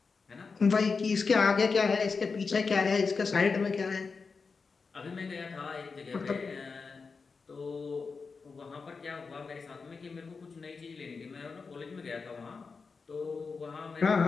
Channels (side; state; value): right; quieter; 4.8 dB